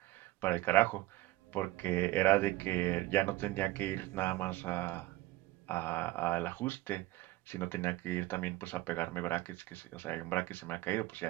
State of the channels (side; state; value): left; quieter; 17.5 dB